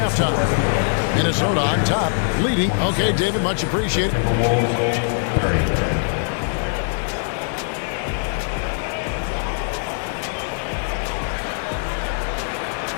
Minnesota on top, leading. Okay, David, much appreciated. Timberwolves 30.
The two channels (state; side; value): silent; right; 64 dB below the other